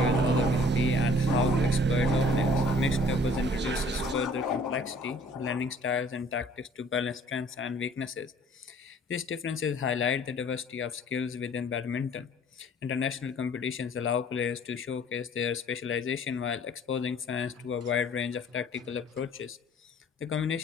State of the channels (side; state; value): both; normal; correlation 0.54